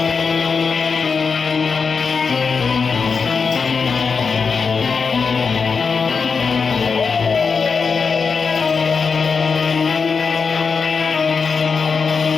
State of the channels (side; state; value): right; quieter; 5.3 dB